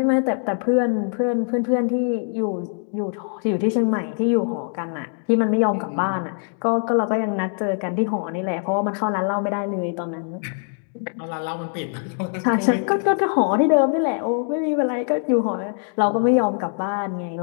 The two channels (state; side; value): silent; right; 56 dB below the other